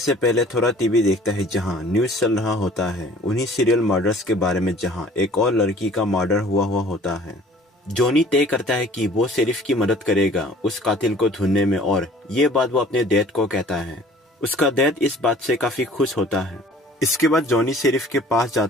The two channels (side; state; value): both; normal; correlation 0.51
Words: पहले थोड़ा टीवी देखता है जहां न्यूज चल रहा होता है उन्हीं सीरियल मर्डर्स के बारे में जहां एक और लड़की का मर्डर हुआ होता है। जॉनी तय करता है कि वो शेरिफ की मदद करेगा उस कातिल को ढूंढने में और ये बात वो अपने डैड को कहता है। उसका डैड इस बात से काफी खुश होता है। इसके बाद जॉनी शेरिफ के पास